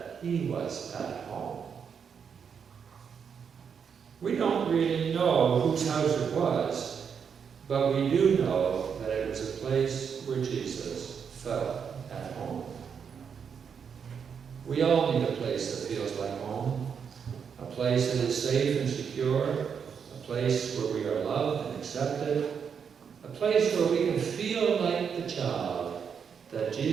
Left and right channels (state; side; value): quieter; left; 6.9 dB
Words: he was at home. We don't really know whose house it was, but we do know that it was a place where Jesus felt at home. We all need a place that feels like home, a place that is safe and secure, a place where we are loved and accepted, a place where we can feel like the child that